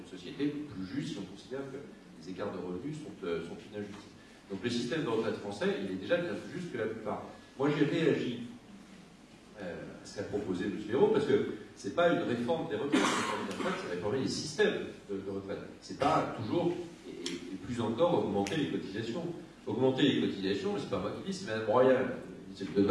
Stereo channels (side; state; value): both; identical; correlation 1.00